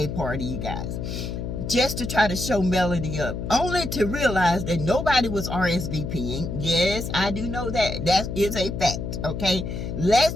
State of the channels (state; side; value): noise; left; hum, 5 dB below the sound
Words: party, you guys, just to try to show Melody up, only to realize that nobody was RSVPing. Yes, I do know that. That is a fact, okay? Let's